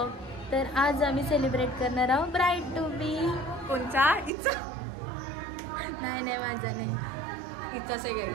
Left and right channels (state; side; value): drops out; left; at 4.3 s